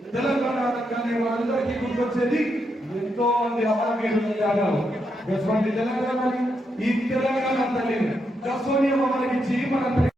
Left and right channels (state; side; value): normal; both; correlation 0.81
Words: తెలంగాణ అనగానే మనందరికీ గుర్తొచ్చేది ఎంతో మంది అమరవీరుల త్యాగాలు. తెలంగాణని ఈ తెలంగాణ తల్లిని దశోనియమ మనకిచ్చి మన